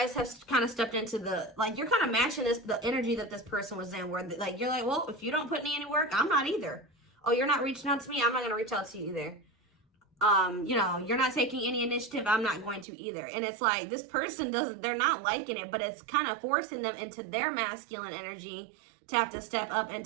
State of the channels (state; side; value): drops out; left; at 12.9 s